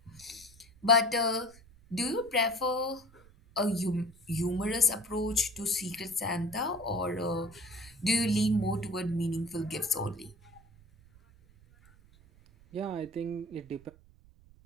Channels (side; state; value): right; noise; rumble, 25 dB below the sound